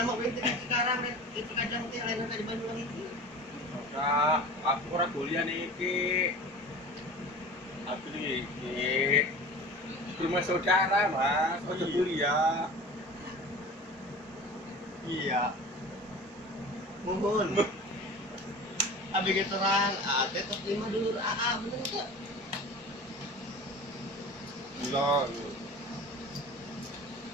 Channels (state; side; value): normal; both; correlation 0.37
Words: gue itu sekarang nih. Itu kadang teh lain di Banyuwangi itu. Ora, aku ora kuliah iki. Aku iki rumah saudara, Mas. Aku kuliah. Iya. Mohon. Abi gitu terang, teh tos 5 dulu. Bener enggak? Gila.